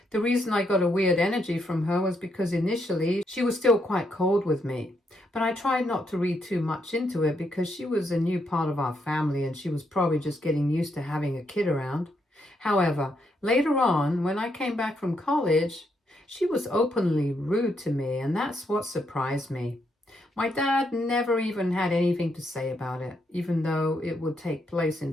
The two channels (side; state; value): both; normal; correlation 0.78